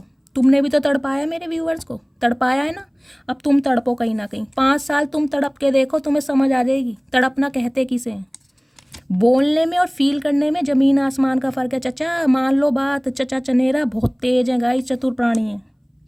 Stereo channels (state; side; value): identical; both; correlation 1.00